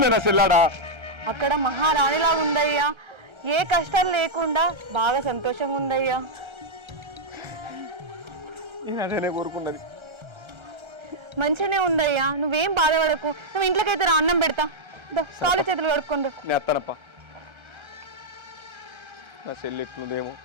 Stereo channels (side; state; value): left; late; 1.3 ms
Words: నా చెల్లాడా అక్కడ మహారాణిలాగా ఉందయ్యా. ఏ కష్టాలు లేకుండా బాగా సంతోషంగా ఉందయ్యా. నేను అదేనే కోరుకున్నది. మంచిగానే ఉందయ్యా, నువ్వేం బాధపడకు. నువ్వు ఇంట్లోకైతే రా, అన్నం పెడతా. కాలు చేతులు కడుక్కుంటూ. నేను అత్తానప్ప. నా చెల్లి ఎట్లుందేమో